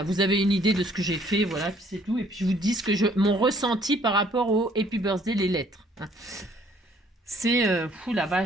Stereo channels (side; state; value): both; normal; correlation 0.62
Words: vous avez une idée de ce que j'ai fait, voilà, puis c'est tout. Et puis je vous dis mon ressenti par rapport au Happy Birthday, les lettres. Hein. C'est, la